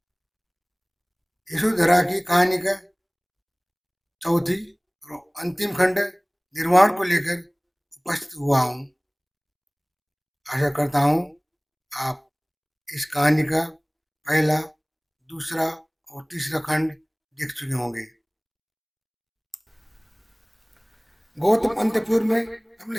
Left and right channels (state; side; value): identical; both; correlation 1.00